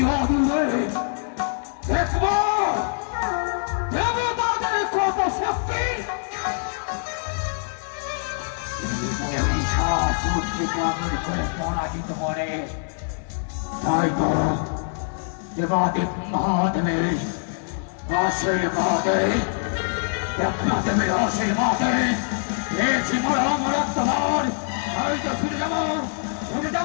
আগুনে দেখবো দেবতাদের কত শক্তি। করে পরাজিত করে তাই তো দেবাদিক মহাদেবের আশীর্বাদে দেবনাথের আশীর্বাদে পেয়েছি মরাত্মবার। আমি তো শুনে যাবো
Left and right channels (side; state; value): right; silent; digital silence